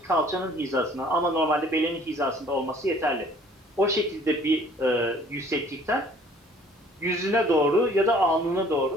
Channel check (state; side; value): normal; both; correlation 0.55